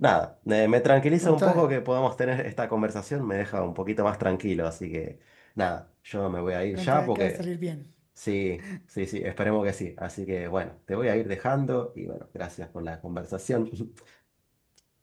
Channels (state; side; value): identical; both; correlation 1.00